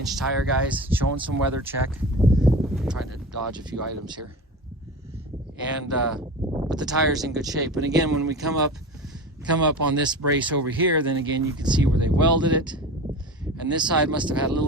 tire, guys, showing some weather check. I'm trying to dodge a few items here. And but the tire's in good shape. And again, when we come up on this brace over here, then again you can see where they welded it. And this side must have had a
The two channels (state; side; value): normal; both; correlation 0.31